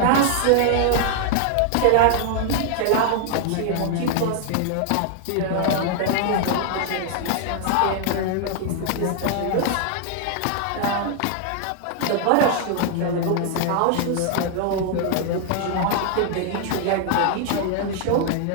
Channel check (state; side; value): different; both; correlation 0.00